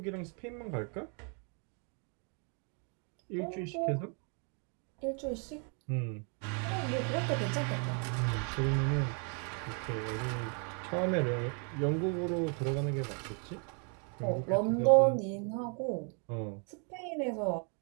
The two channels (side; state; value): left; quieter; 38.8 dB